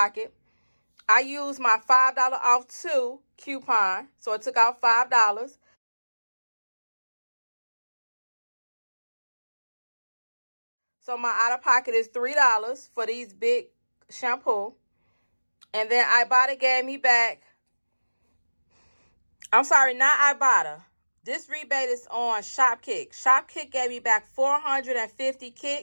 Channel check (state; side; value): inverted; both; correlation -1.00